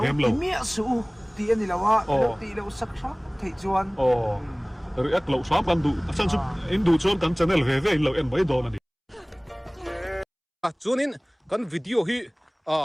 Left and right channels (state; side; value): identical; both; correlation 1.00